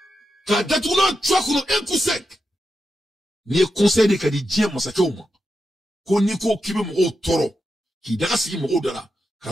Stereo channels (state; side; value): normal; both; correlation 0.88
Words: ka datuna toi kono un coup sec ni conseil de kadi dien masake uma ko ni ko kibe mo toro ki daga sigi mo dala